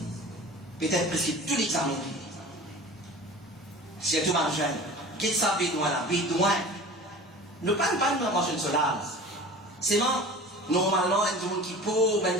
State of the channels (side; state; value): both; normal; correlation 0.39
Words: Peut-être presque tout l'examen. C'est tout margin. Qu'est-ce que ça bédouin là? Bédouin. Ne parle pas de manger une solade. C'est non. Normalement, il y a des gens qui pauvres, il y a des